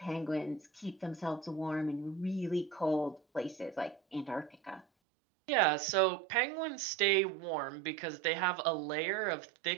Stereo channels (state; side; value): drops out; left; at 4.9 s